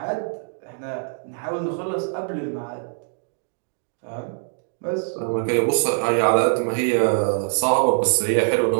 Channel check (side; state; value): left; silent; digital silence